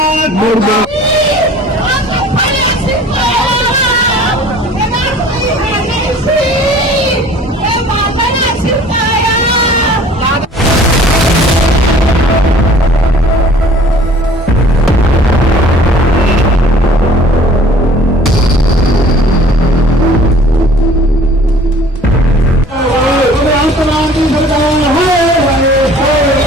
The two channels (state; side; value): normal; both; correlation 0.50